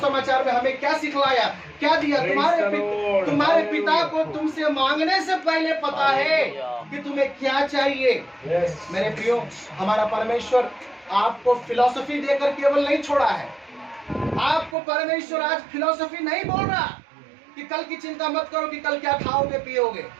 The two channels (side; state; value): left; drops out; at 14.8 s